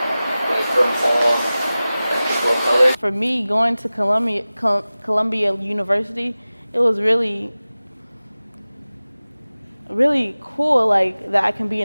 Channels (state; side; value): inverted; both; correlation -0.97